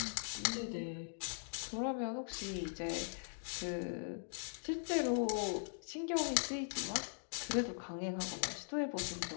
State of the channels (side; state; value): right; silent; digital silence